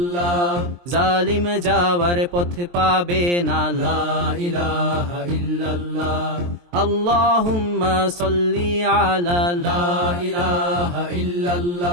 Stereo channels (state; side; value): late; left; 23 ms